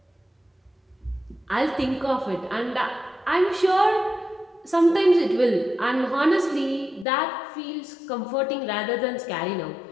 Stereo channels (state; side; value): drops out; right; at 7.1 s